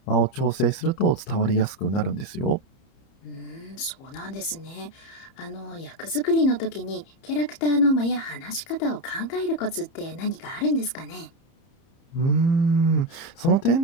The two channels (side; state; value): right; late; 30 ms